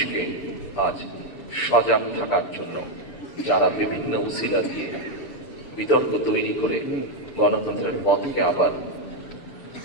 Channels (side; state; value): right; late; 6.8 ms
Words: আজ সজাগ থাকার জন্য যারা বিভিন্ন উসিলা দিয়ে বিতর্ক তৈরি করে গণতন্ত্রের পথকে আবার